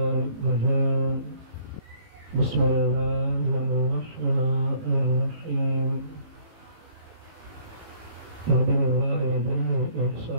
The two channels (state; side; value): late; left; 18 ms